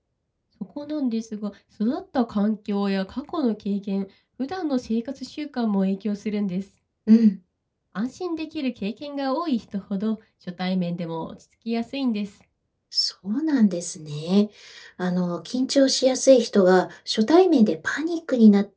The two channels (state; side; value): identical; both; correlation 1.00